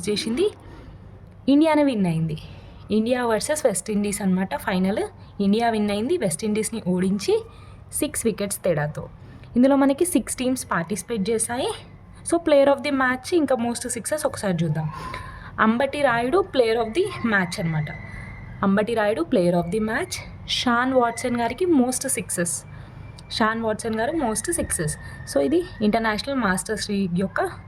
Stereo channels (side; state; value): both; identical; correlation 1.00